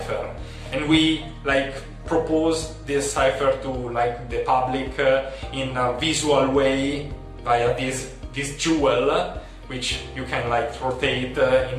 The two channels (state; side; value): identical; both; correlation 1.00